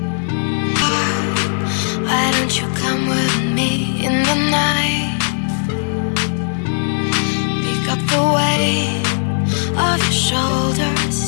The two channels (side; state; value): right; silent; digital silence